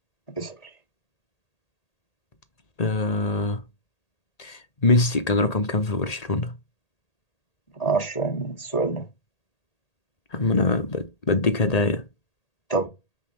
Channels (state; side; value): late; right; 1.8 ms